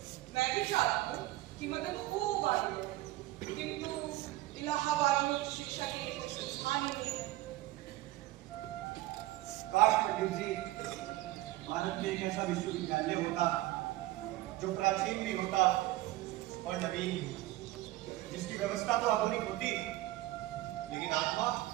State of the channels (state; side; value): quieter; left; 17.1 dB